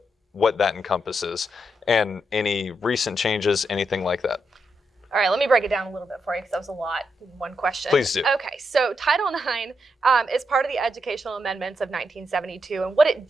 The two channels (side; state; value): both; normal; correlation 0.82